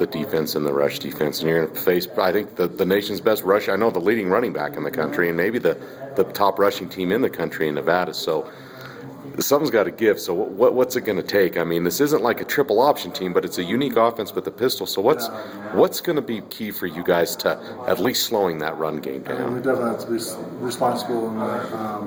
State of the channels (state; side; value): identical; both; correlation 1.00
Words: defense and the rush defense, and you're going to face, I think, the nation's best rush. I know the leading running back in the country, and maybe the top rushing team in the country in Nevada. So something's got to give. So what's it going to take? I mean, this isn't like a triple option team, but it's a unique offense with the pistol. So what's going to be key for you guys to at least slowing that run game down? We definitely have to be responsible in